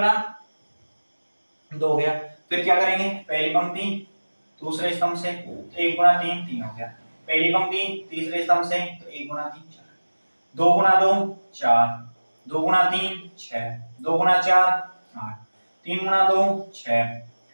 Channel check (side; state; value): both; inverted; correlation -1.00